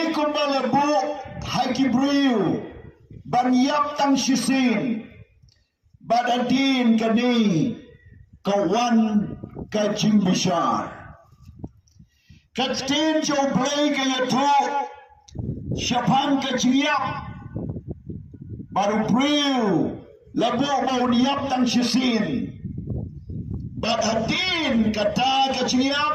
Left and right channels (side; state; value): both; identical; correlation 1.00